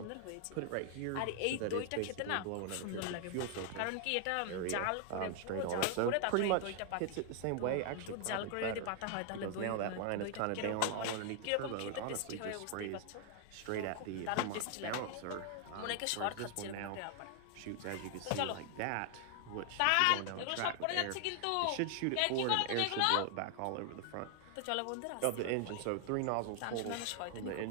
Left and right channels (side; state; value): both; different; correlation 0.00